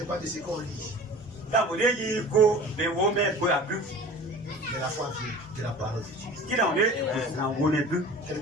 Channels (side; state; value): both; normal; correlation 0.40